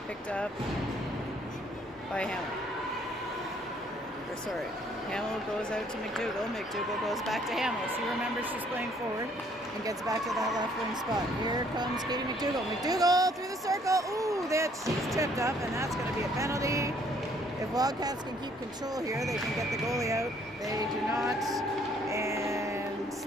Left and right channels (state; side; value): normal; both; correlation 0.63